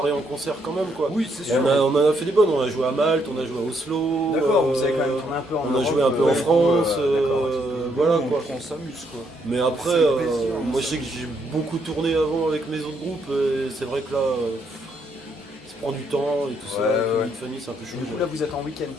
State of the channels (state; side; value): normal; both; correlation 0.74